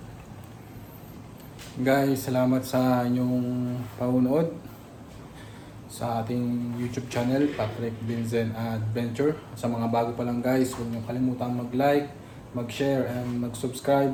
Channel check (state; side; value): identical; both; correlation 1.00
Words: Guys, salamat sa inyong paunood sa ating YouTube channel, Patrick Binzen Adventure. Sa mga bago pa lang guys, huwag niyo kalimutan mag-like, mag-share, and